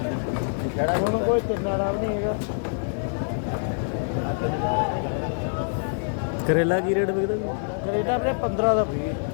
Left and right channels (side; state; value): right; silent; digital silence